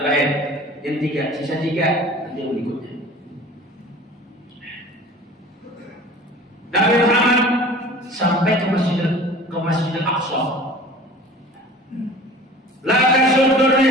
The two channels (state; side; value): normal; both; correlation 0.43